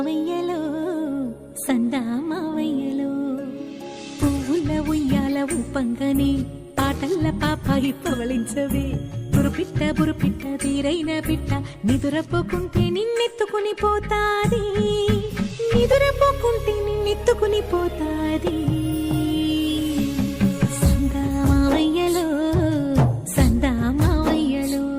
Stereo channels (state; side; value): identical; both; correlation 1.00